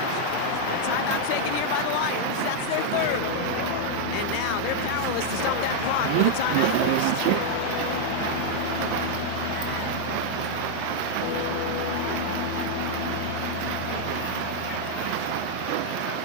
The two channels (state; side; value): different; both; correlation 0.00